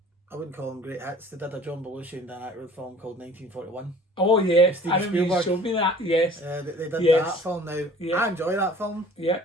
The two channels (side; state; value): both; normal; correlation 0.49